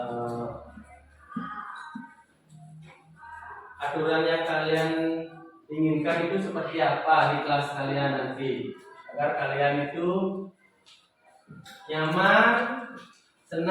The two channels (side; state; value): both; identical; correlation 1.00